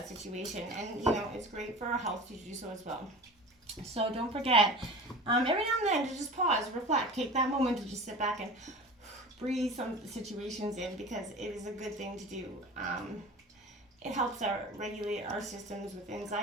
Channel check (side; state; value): both; normal; correlation 0.37